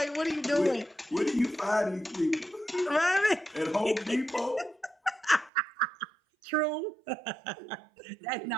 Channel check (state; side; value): drops out; left; at 5.5 s